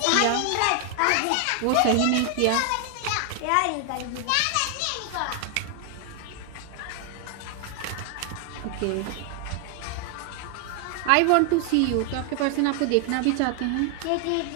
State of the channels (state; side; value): different; both; correlation 0.00